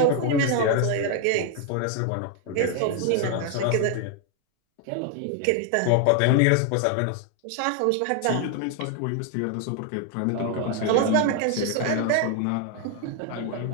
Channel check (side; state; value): both; different; correlation 0.00